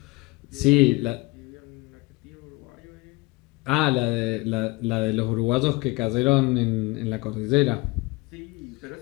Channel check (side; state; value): right; quieter; 24.0 dB